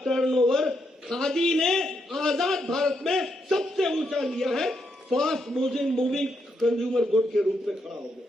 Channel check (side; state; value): both; normal; correlation 0.79